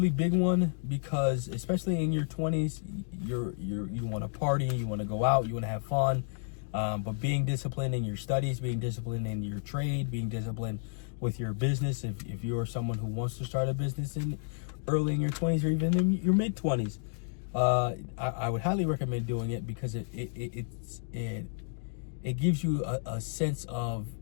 big one, because especially in your 20s, you want to party, you want to go out, you want to have fun, but being disciplined in your studies, being disciplined in your trade, being disciplined with your business, if you're someone who wants to start a business early in your 20s or even in your mid 20s, I would highly recommend doing it, because it gives you a sense of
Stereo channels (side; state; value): right; silent; digital silence